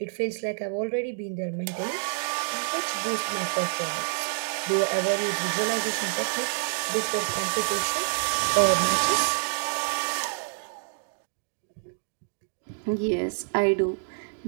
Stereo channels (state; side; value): silent; left; digital silence